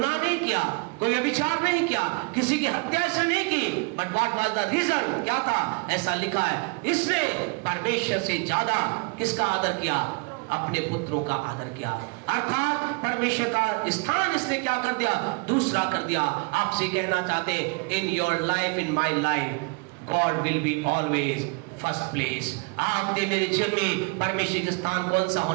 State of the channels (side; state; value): left; quieter; 32.1 dB